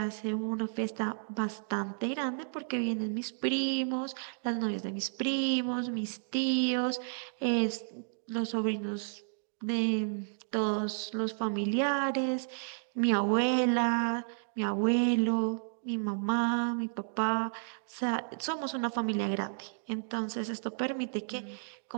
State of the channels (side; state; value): left; silent; digital silence